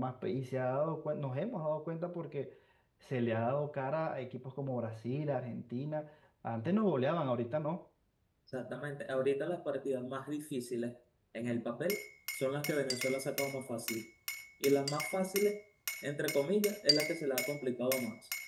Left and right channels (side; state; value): both; identical; correlation 1.00